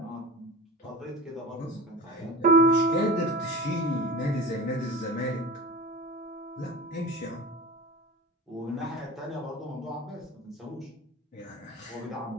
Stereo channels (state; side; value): normal; both; correlation 0.33